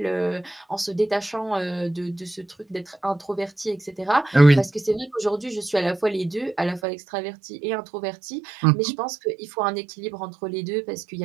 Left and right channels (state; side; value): drops out; left; at 6.8 s